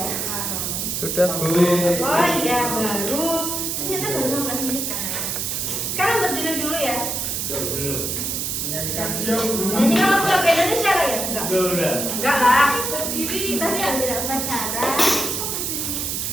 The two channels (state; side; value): noise; right; hiss, 2 dB below the sound